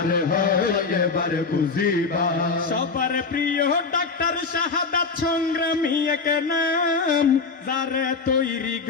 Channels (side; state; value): right; quieter; 4.6 dB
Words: হয় এবার বুঝিবা সবার প্রিয় ডাক্তার শাহাদাত সংগ্রামী এক নাম যারে তৈরি